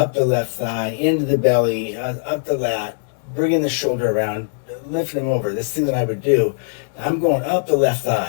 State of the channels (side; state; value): right; silent; digital silence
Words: the left thigh, into the belly, up the lat, bringing the shoulder around, lifting them over, this thing that I would do, I'm going up the left